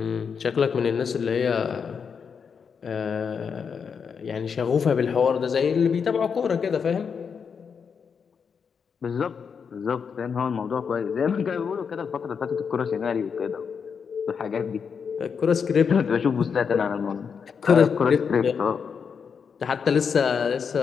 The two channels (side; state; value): right; quieter; 6.3 dB